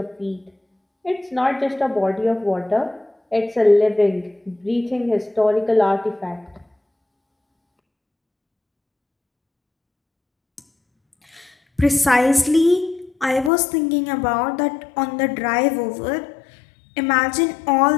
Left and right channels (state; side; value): drops out; right; at 13.5 s